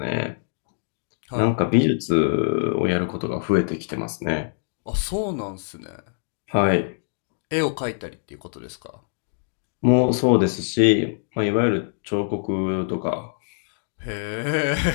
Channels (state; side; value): silent; right; digital silence